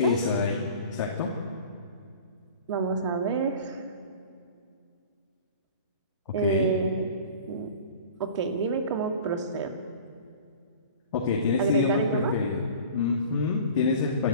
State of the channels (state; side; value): inverted; both; correlation -0.41